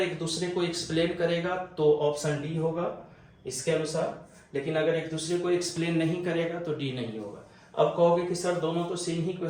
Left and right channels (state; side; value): identical; both; correlation 1.00